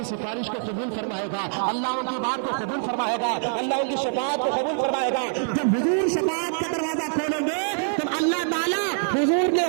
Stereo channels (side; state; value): left; silent; 57 dB below the other